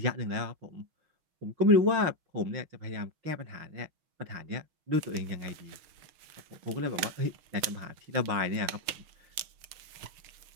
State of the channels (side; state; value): left; late; 6.5 ms